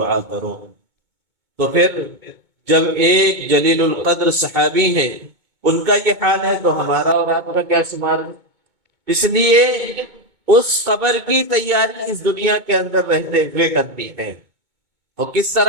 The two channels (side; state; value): left; late; 2.2 ms